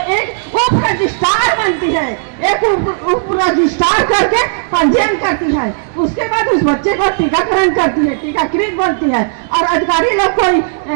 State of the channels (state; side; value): silent; left; digital silence